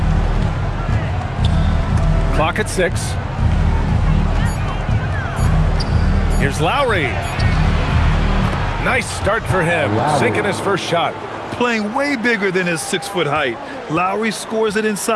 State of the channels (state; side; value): identical; both; correlation 1.00